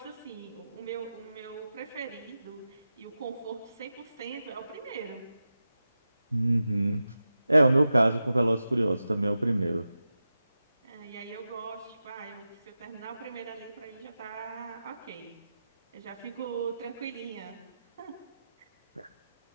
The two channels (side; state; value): both; inverted; correlation -0.92